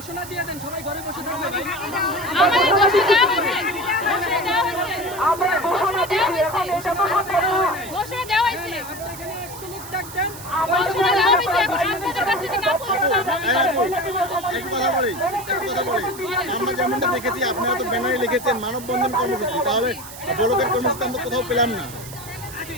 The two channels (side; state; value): right; noise; hiss, 14 dB below the sound